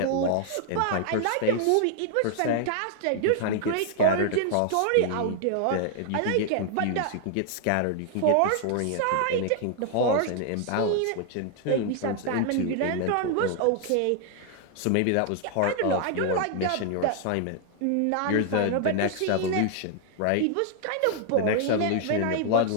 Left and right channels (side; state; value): both; different; correlation 0.00